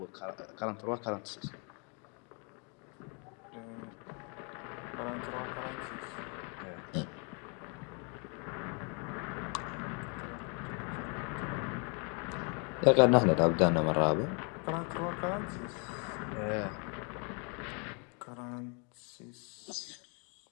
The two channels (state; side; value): quieter; right; 35.9 dB